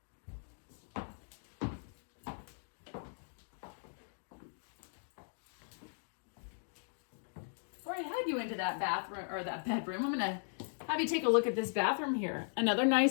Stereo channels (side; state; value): right; silent; digital silence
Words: Before I head you into that bathroom or that bedroom, I'm gonna have you take a look at this bathroom here. Another